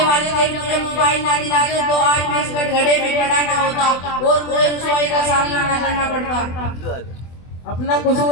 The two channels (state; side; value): late; right; 24 ms